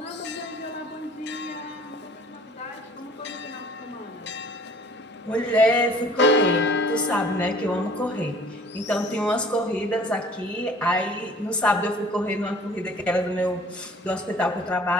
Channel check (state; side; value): normal; both; correlation 0.51